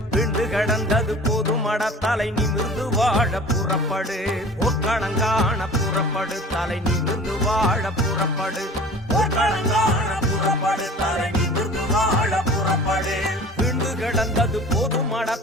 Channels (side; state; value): both; normal; correlation 0.42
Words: விண்டு கிடந்தது போதுமட தலை நிமிர்ந்து வாழ புறப்படு போர்க்களங்கான புறப்படு தலை நிமிர்ந்து வாழ புறப்படு போர்க்களங்கான புறப்படு தலை நிமிர்ந்து வாழ புறப்படு விண்டு கிடந்தது போதுமட